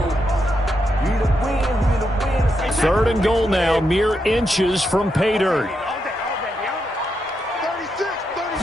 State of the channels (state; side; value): normal; both; correlation 0.83